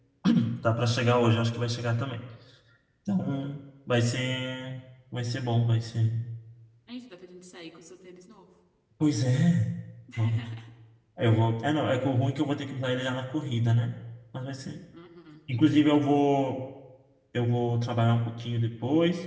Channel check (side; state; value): both; identical; correlation 1.00